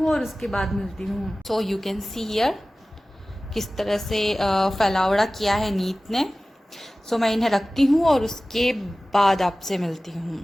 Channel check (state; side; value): normal; both; correlation 0.97